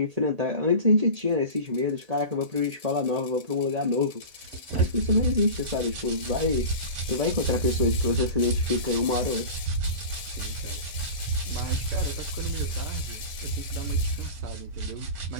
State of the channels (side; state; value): left; late; 1.5 ms